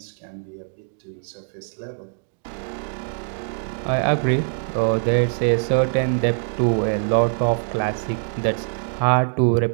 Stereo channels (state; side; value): silent; left; digital silence